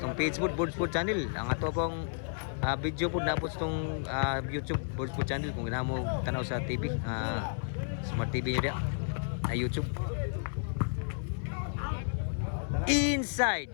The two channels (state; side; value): silent; right; 56 dB below the other